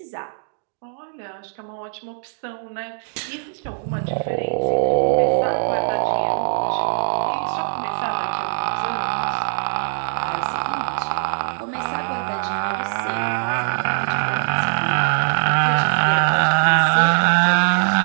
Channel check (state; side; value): silent; left; digital silence